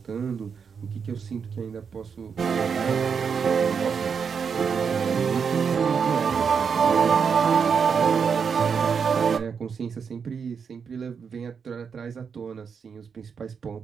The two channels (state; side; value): quieter; left; 6.3 dB